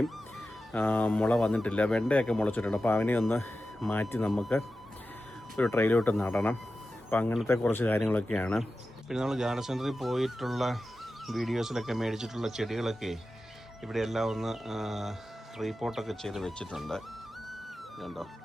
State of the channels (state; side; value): normal; both; correlation 0.93